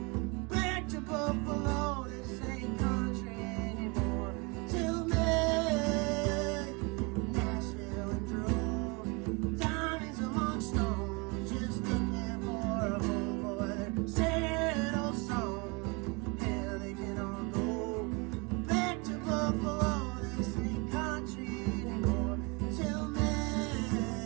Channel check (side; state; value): left; quieter; 29.2 dB